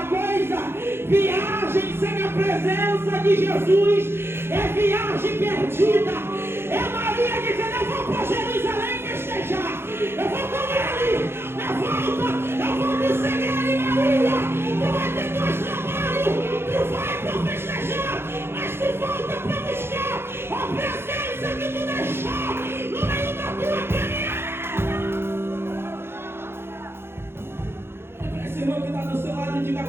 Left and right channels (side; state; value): left; late; 0.11 ms